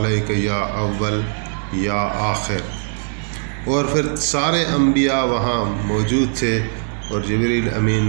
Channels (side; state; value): left; silent; 63 dB below the other